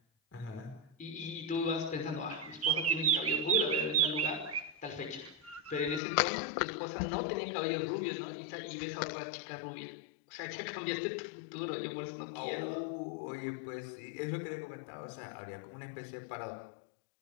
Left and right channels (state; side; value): drops out; right; at 6.0 s